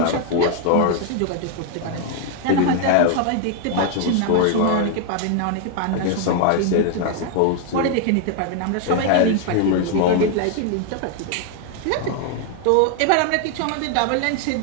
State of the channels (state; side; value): different; both; correlation 0.00